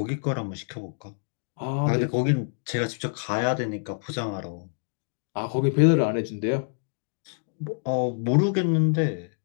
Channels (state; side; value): silent; right; digital silence